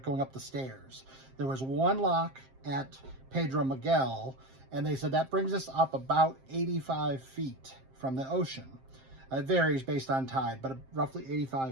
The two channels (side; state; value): left; late; 7.6 ms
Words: going up the stairs. There was 1 lock at Pedro Miguel, and they said that brings us up about 85 feet from the ocean. It varies based on tide, but roughly